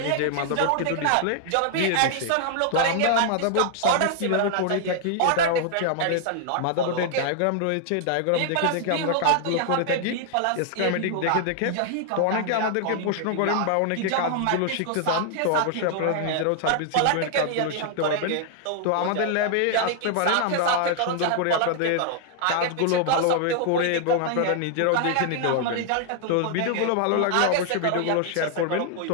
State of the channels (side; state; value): both; different; correlation 0.00